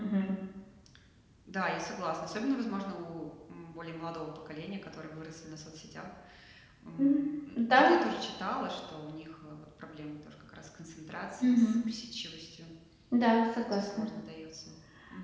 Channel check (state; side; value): identical; both; correlation 1.00